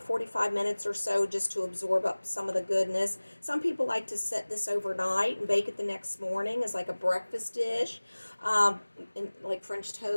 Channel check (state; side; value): inverted; both; correlation -1.00